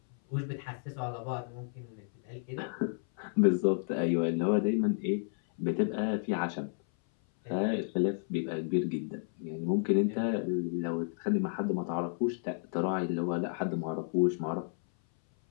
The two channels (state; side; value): silent; right; 57 dB below the other